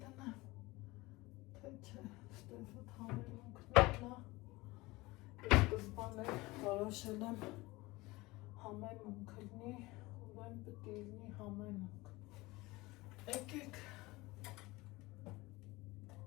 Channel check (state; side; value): quieter; right; 21.3 dB